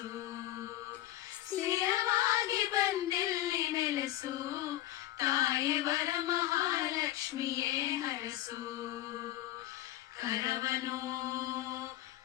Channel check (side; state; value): right; quieter; 14.7 dB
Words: ಸ್ಥಿರವಾಗಿ ಬಂದಿಲ್ಲಿ ನೆಲೆಸು, ತಾಯಿ ವರಮಹಾಲಕ್ಷ್ಮಿಯೇ ಹರಸು. ಕರವನು